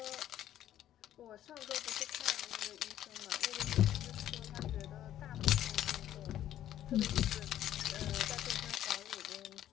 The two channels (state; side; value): quieter; right; 11.9 dB